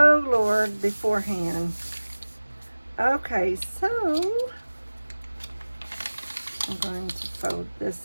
Lord, beforehand. Okay, so I'm going to fold this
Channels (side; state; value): both; inverted; correlation -1.00